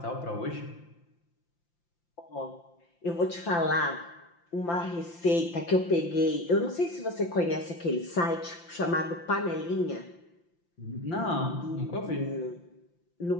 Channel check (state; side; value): late; right; 5.8 ms